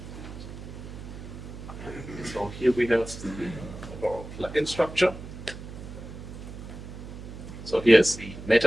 so here we have the overall plugin structure. So here's the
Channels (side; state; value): right; noise; hum, 12 dB below the sound